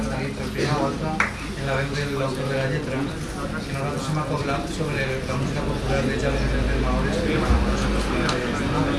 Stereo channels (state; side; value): identical; both; correlation 1.00